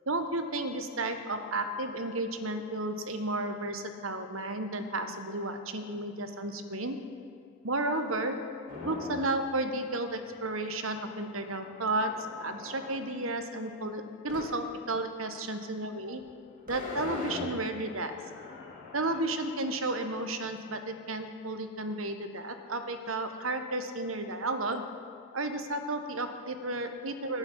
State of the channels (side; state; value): both; normal; correlation -0.06